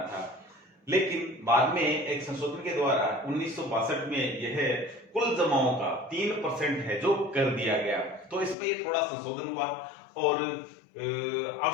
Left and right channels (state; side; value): drops out; right; at 8.6 s